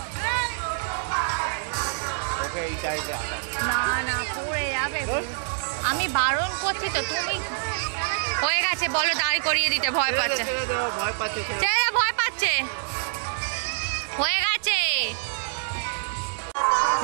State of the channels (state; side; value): silent; left; digital silence